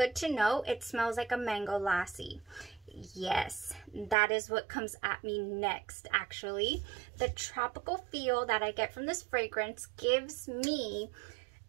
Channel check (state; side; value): drops out; left; at 4.2 s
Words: to know, it smells like a mango lassie. Yes, that is what comes at me next, actually. The tropical feel that I get from this fragrance gives me